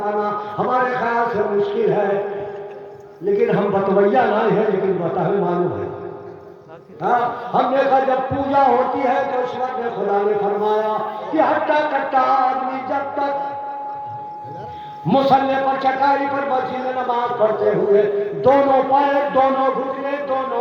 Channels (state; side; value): identical; both; correlation 1.00